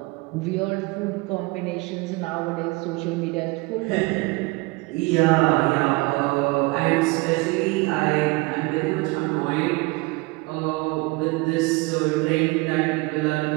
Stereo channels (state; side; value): quieter; left; 25.1 dB